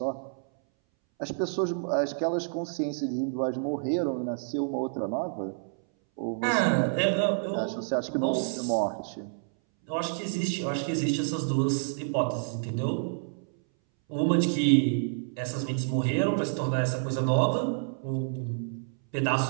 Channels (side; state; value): left; silent; 59 dB below the other